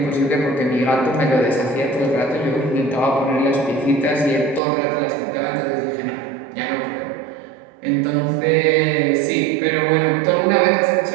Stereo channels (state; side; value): drops out; left; at 4.6 s